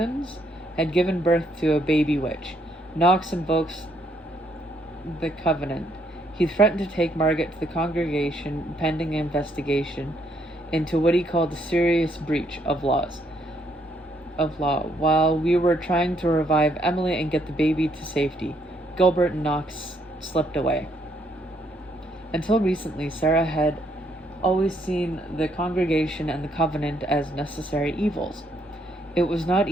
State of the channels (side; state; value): both; normal; correlation 0.72